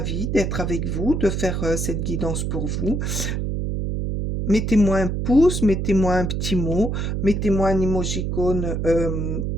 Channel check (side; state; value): right; noise; hum, 1 dB below the sound